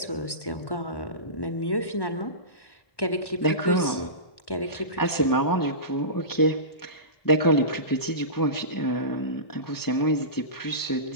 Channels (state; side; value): late; right; 1.1 ms